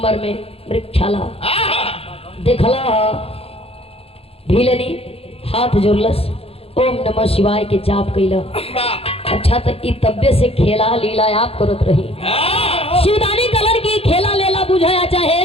में मृगछाला। देखला भीलनी हाथ जोड़लस, ओम नमः शिवाय के जाप कैला। अच्छा तो इ तब्बे से खेला लीला आप करत रही। शिवदानी कलर की खेला लेला बुझाया चाहे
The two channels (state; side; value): late; right; 0.28 ms